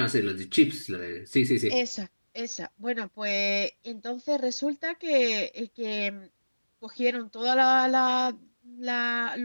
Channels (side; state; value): both; inverted; correlation -1.00